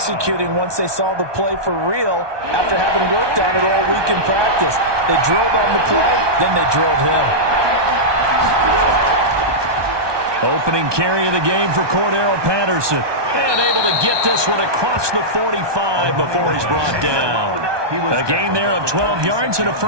once they saw the play for real after having worked on it all week in practice. They drilled on the play, then they drilled him. Opening carry of the game for Cordero Patterson. And able to get this one across the 45 before he's brought down. A gain there of 12 yards and a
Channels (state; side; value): late; left; 1.2 ms